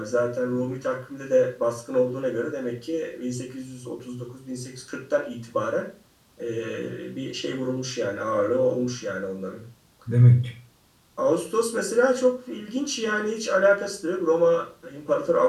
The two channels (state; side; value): identical; both; correlation 1.00